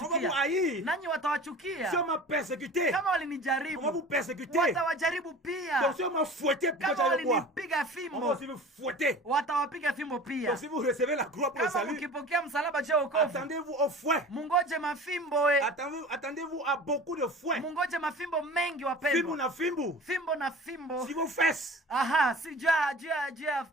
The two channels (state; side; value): normal; both; correlation 0.40